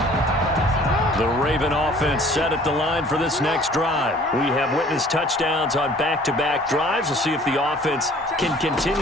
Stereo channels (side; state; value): both; normal; correlation 0.52